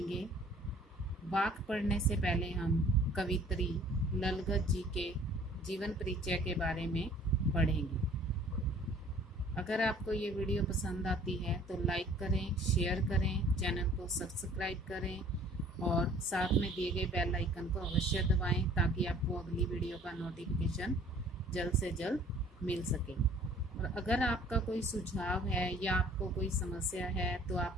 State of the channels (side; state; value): both; normal; correlation 0.53